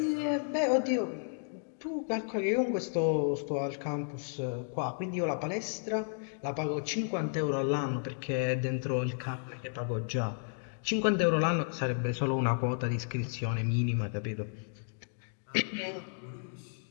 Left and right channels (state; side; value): silent; right; digital silence